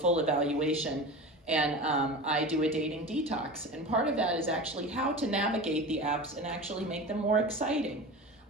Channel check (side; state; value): both; normal; correlation 0.31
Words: evaluation, and I do a dating detox. And part of that is actually how to navigate the apps and actually make them more exciting.